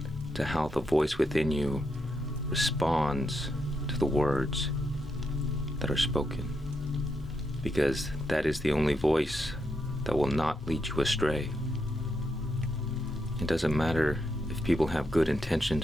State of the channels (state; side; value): normal; both; correlation 0.82